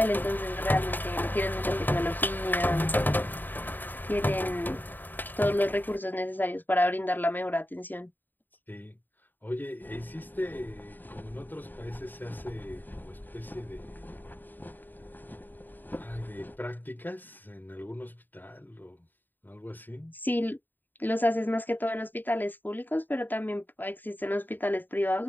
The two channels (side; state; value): right; late; 0.090 ms